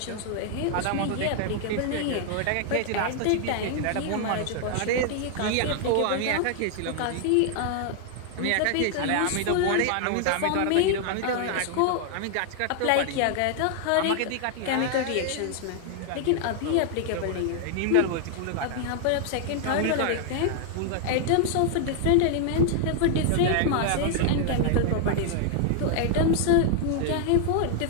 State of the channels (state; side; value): different; both; correlation 0.00